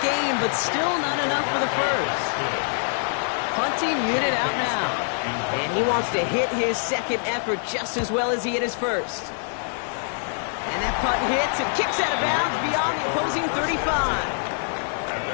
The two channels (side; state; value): right; silent; digital silence